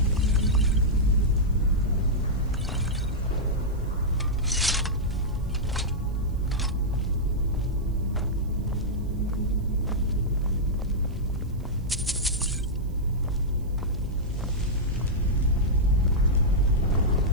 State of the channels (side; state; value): right; noise; hiss, 30 dB below the sound